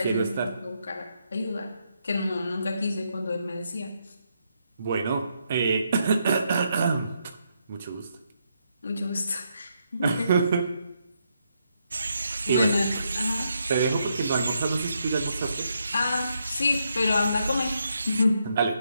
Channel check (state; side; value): inverted; both; correlation -0.79